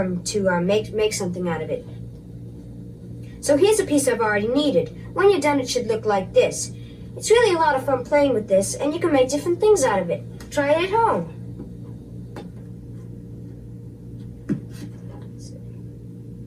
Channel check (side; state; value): both; identical; correlation 1.00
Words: to make something out of it. So here's a piece I've already kneaded. When you're done, it should look like this. It's really a lot of fun playing with this, and you can make different things out of it. Try it at home.